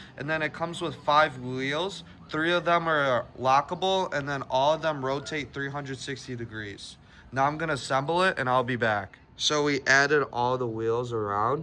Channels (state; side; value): identical; both; correlation 1.00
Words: and then it comes with 5 wheels. 3 of them are lockable, and then all of them rotate 360 degrees. Now I'm gonna assemble it and I'll be back. So we added all the wheels